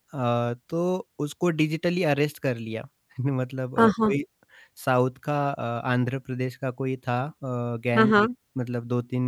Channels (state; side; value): identical; both; correlation 1.00